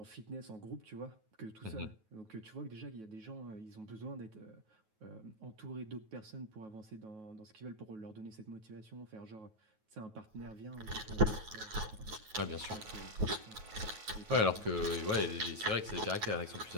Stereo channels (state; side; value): late; left; 9.3 ms